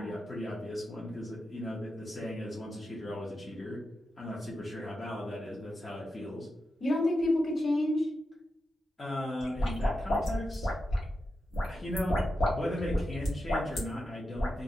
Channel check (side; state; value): both; normal; correlation 0.89